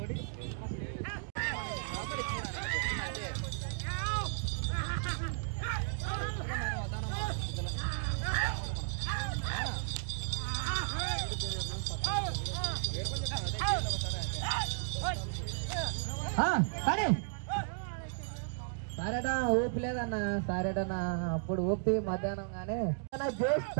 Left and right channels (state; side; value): silent; left; digital silence